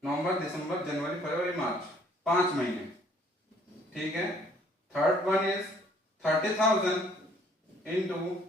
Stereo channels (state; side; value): normal; both; correlation 0.61